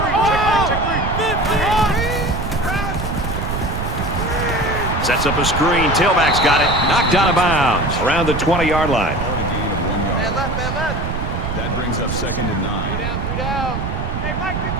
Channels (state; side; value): noise; right; rumble, 3 dB below the sound